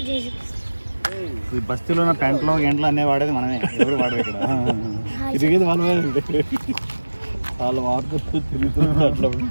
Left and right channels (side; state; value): both; inverted; correlation -1.00